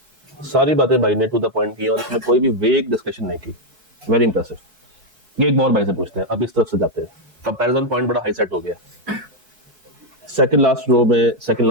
सारी बातें भाई ने टू द पॉइंट की और इसमें कोई भी वेग डिस्कशन नहीं की। Very impressive. ये एक और भाई से पूछते हैं, अब इस तरफ से जाते हैं। कंपैरिजन पॉइंट बड़ा हाई सेट हो गया। सेकंड लास्ट रो में सेकंड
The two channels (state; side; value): late; left; 4.6 ms